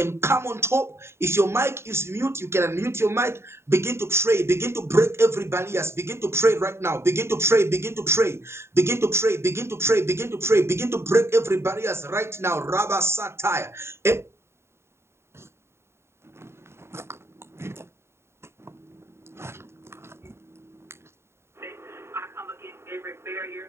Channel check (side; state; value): left; late; 0.12 ms